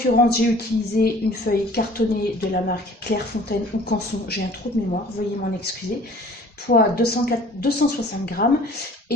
j'ai utilisé une feuille cartonnée de la marque Clairefontaine ou Canson. J'ai un trou de mémoire, veuillez m'en excuser. Poids 260 grammes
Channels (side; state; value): both; normal; correlation 0.51